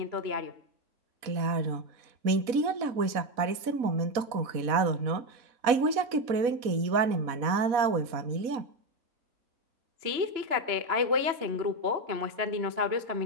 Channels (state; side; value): late; left; 4.1 ms